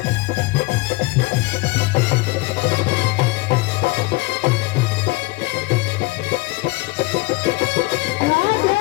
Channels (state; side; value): quieter; right; 23.7 dB